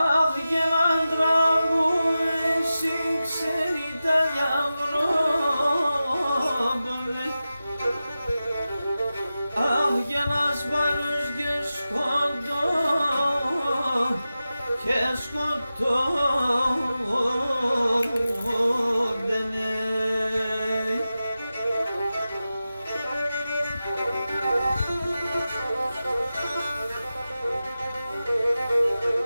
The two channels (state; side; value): inverted; both; correlation -0.93